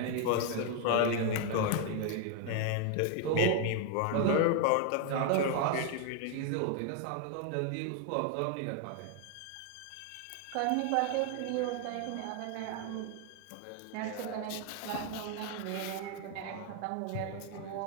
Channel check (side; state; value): both; different; correlation 0.00